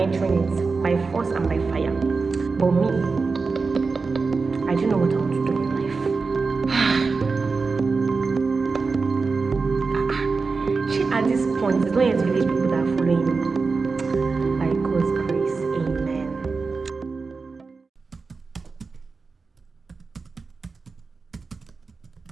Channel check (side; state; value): left; quieter; 4.4 dB